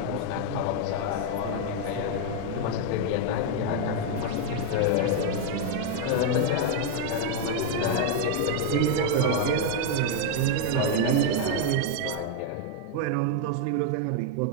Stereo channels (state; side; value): different; both; correlation 0.00